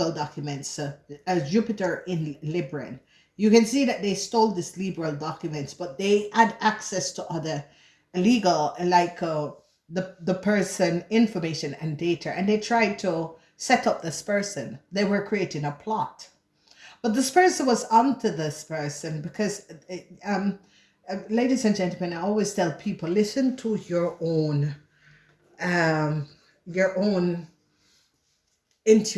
documents as Jupiter in Libra. You can see that they stole these liberal documents, but they had access to other legal, like the person information and data, and they tried to set up this person. They were creating a plot, but this person was onto this person because, ladies and gentlemen, I always tell people, listen to um, your own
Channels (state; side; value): identical; both; correlation 1.00